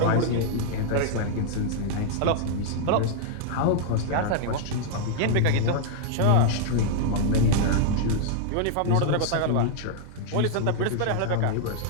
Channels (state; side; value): different; both; correlation -0.01